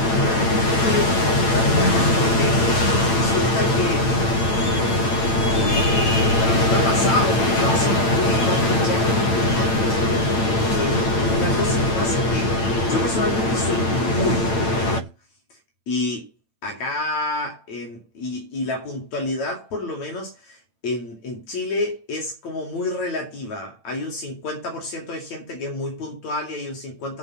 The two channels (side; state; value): right; late; 8.9 ms